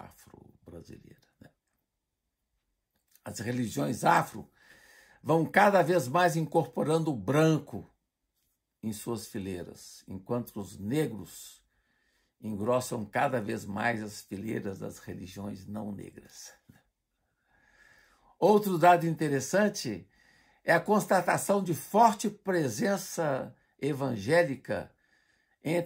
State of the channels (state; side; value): identical; both; correlation 1.00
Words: né? As religiões afro vão cada vez mais incorporando o branco em suas fileiras, enquanto os negros engrossam cada vez mais as fileiras das religiões não negras. Outro dado interessante é a constatação de forte presença evangélica